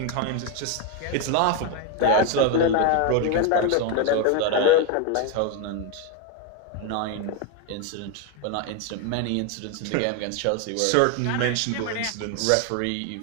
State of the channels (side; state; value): both; different; correlation 0.02